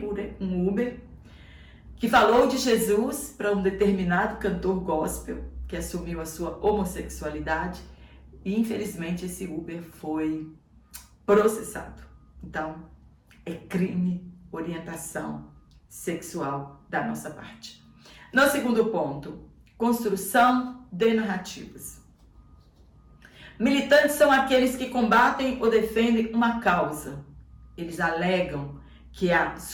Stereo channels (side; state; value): both; identical; correlation 1.00